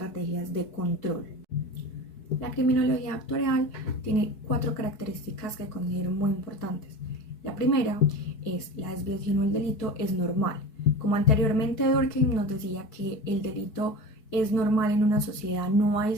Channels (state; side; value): late; right; 4.6 ms